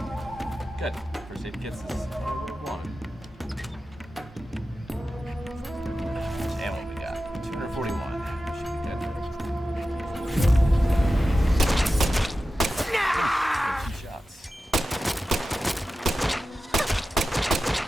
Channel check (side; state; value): both; normal; correlation 0.93